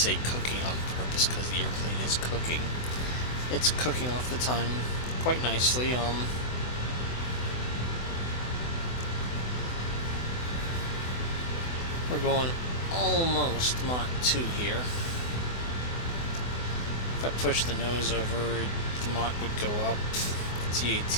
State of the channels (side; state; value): right; late; 24 ms